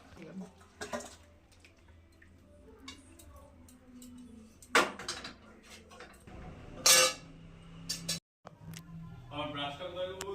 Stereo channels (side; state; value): both; identical; correlation 1.00